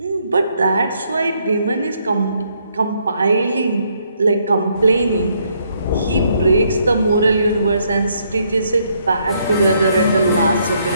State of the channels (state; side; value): inverted; both; correlation -0.72